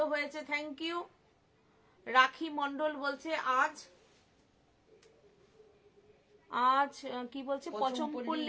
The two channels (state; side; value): identical; both; correlation 1.00